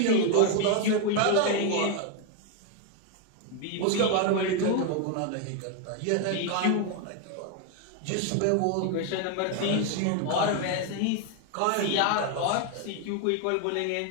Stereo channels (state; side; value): different; both; correlation 0.01